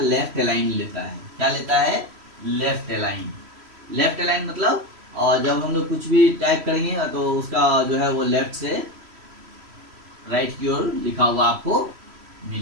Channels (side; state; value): left; late; 3.1 ms